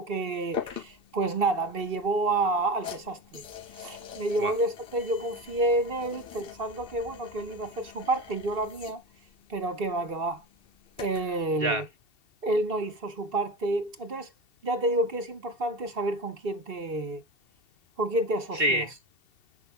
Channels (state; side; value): late; left; 2.7 ms